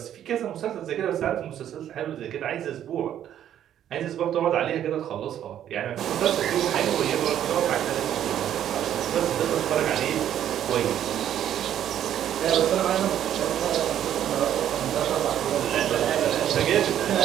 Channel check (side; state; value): left; quieter; 10.6 dB